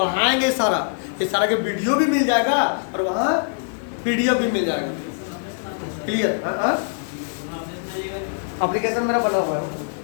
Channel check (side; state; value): right; silent; 64 dB below the other